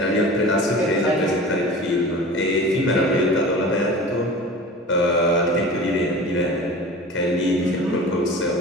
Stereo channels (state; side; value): normal; both; correlation 0.37